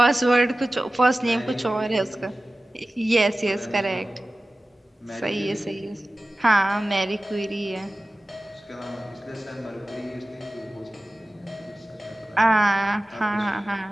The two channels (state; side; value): normal; both; correlation 0.96